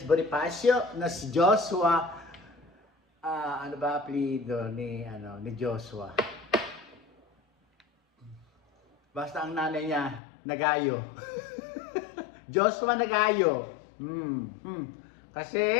Bonifacio na si Joshua. Ano ba apelido ni Joshua? Basta ang nanay niya, Nagayo. Joshua Nagayo.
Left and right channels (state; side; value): drops out; right; at 10.2 s